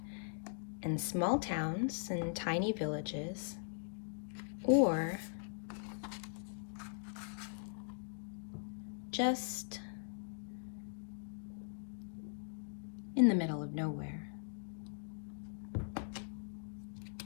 and small towns and tiny villages, or just in the middle of nowhere.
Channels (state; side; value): silent; right; digital silence